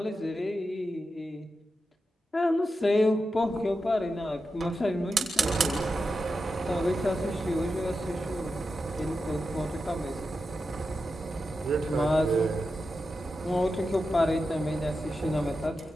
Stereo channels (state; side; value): normal; both; correlation 0.89